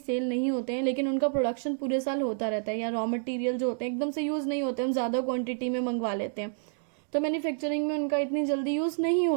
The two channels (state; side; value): silent; left; digital silence